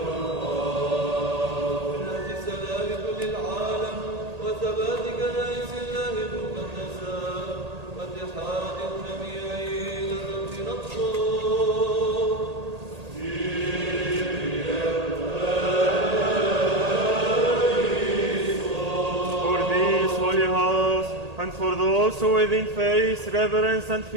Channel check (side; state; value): left; late; 1.8 ms